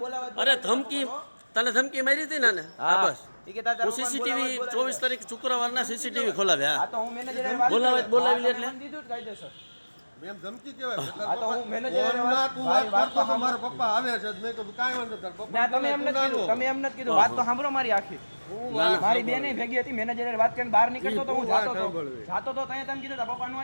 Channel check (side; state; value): both; inverted; correlation -1.00